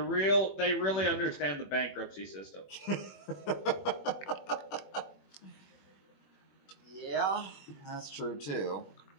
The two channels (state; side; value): late; right; 21 ms